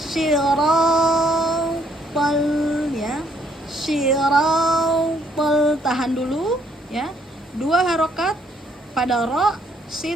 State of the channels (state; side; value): normal; both; correlation 0.68